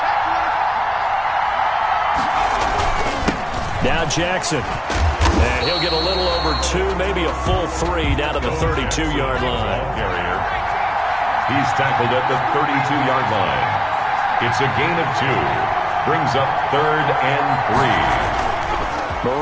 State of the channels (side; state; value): both; identical; correlation 1.00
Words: Now Jackson. And he'll get a little over 2, maybe a full 3 down to the 32-yard line. He's tackled at the 32-yard line. It's a gain of 2. Brings up 3rd and 3.